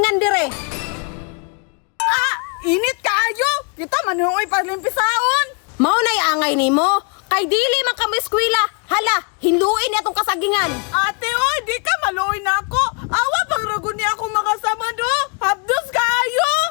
dire. Init kaayo. Kita manuoy palimpisaon. Mao nay angay nimo. Kay dili man ka mo eskwela. Hala, hiluin niya tong kasagingan. Ate, oy, di ka maluoy na ako. Awa pang ragon niya akong makasama do. Habdos kaayo.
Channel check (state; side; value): quieter; right; 35.2 dB